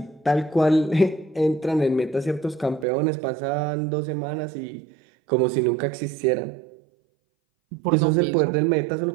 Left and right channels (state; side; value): drops out; left; at 2.9 s